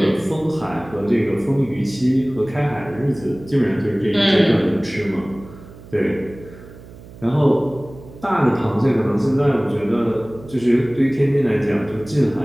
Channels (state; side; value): noise; right; hum, 19 dB below the sound